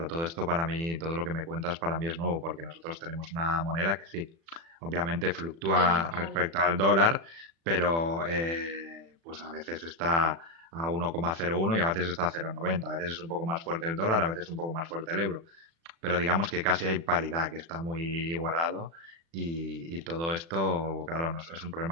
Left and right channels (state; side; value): late; left; 36 ms